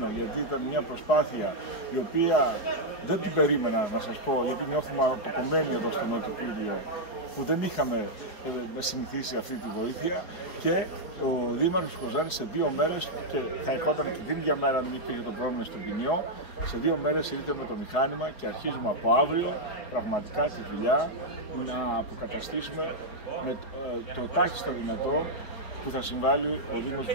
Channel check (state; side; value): late; right; 4.7 ms